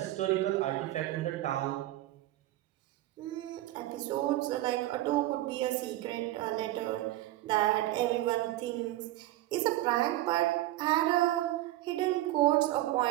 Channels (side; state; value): left; quieter; 16.0 dB